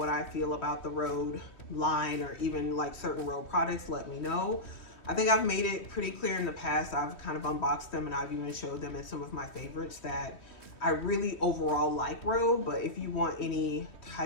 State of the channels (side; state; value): right; late; 3.1 ms